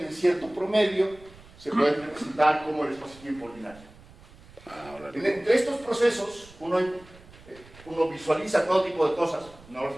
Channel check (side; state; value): right; noise; rumble, 23 dB below the sound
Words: en cierto promedio se pueden representar como el espacio-tiempo ordinario. Entre estos procesos, uno visualiza todo tipo de cosas, no los